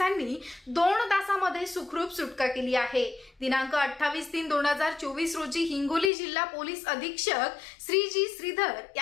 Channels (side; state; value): right; drops out; at 6.1 s